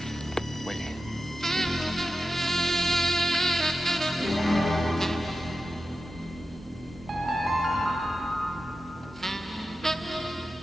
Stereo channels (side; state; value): both; normal; correlation 0.92